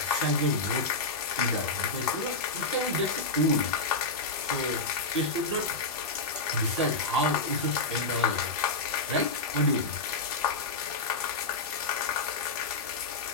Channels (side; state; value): right; quieter; 3.4 dB